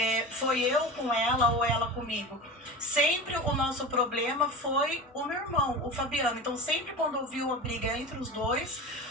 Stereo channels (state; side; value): normal; both; correlation 0.29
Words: foi eu com ela ou ela comigo. Sempre o nosso problema foi o meu irmão, o Fabiano. Então, sempre quando ouviu a briga entre os dois,